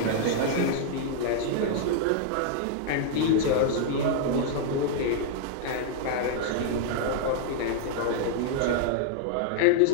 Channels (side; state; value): both; different; correlation 0.00